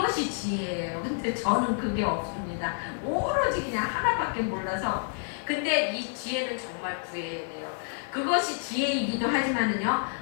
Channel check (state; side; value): silent; right; 59 dB below the other